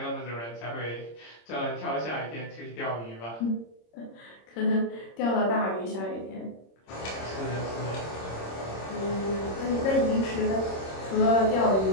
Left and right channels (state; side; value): late; right; 26 ms